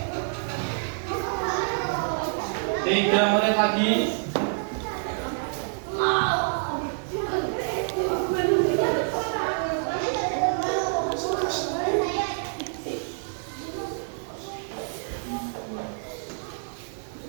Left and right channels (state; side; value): silent; left; 60 dB below the other